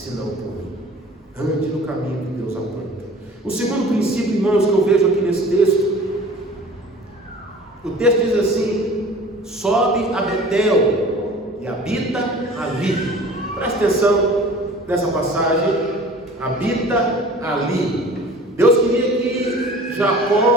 por mim. Ande no caminho que Deus aponta. O segundo princípio, irmãos, que eu vejo aqui nesse texto, o texto diz assim: sobe a Betel e habita ali. Presta atenção nessa passagem: habita ali. Deus queria que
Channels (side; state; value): both; normal; correlation 0.44